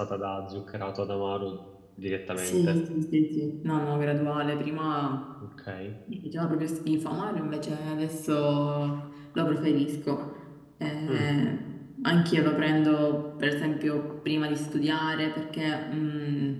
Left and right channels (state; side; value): identical; both; correlation 1.00